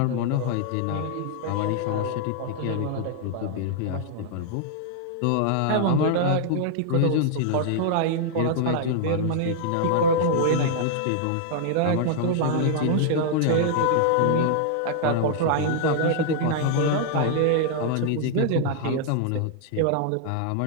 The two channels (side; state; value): both; different; correlation -0.01